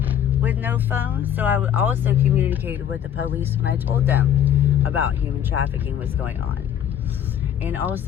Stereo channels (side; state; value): right; quieter; 9.6 dB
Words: with no phone. So I also communicated with the police when I told them about human trafficking was going on. And